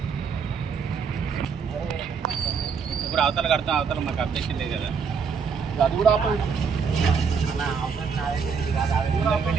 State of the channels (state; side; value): quieter; left; 6.0 dB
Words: ఇప్పుడు అవతల కడతాం అవతల మాకు అప్డేషన్ లేదు కదా అది కూడా ఆపండి